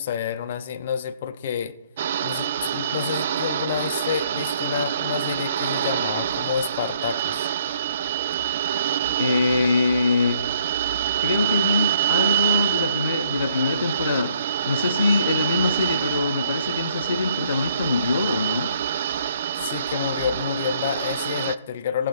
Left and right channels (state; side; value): inverted; both; correlation -0.63